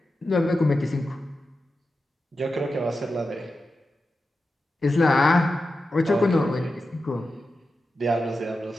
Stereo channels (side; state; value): both; normal; correlation 0.91